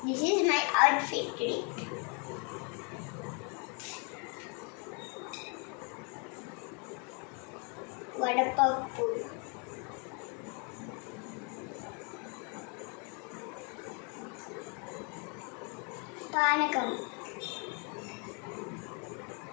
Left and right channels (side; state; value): right; quieter; 35.8 dB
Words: This is my outfit today. వడపప్పు, పానకం,